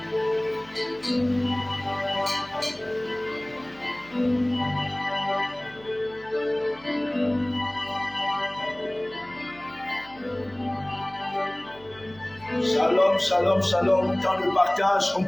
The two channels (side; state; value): right; noise; hum, 24 dB below the sound